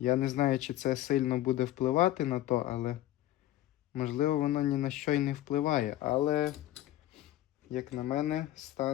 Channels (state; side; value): quieter; right; 14.3 dB